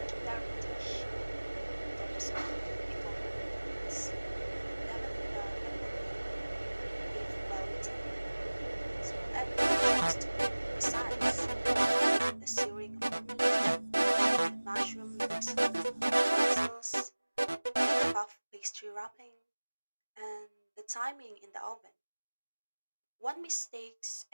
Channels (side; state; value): both; inverted; correlation -1.00